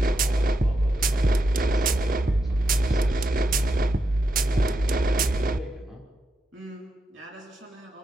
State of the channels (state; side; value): normal; both; correlation 0.85